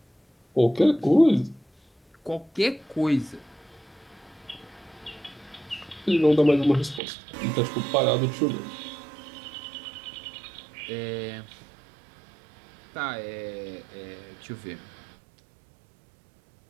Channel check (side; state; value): left; drops out; at 7.0 s